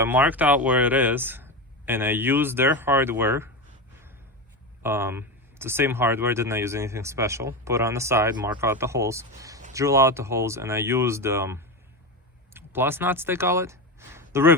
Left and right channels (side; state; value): both; normal; correlation 0.17